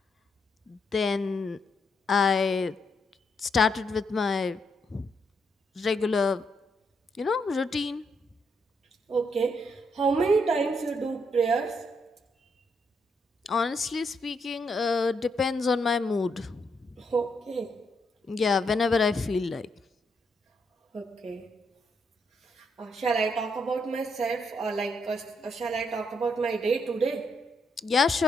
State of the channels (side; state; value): both; normal; correlation 0.77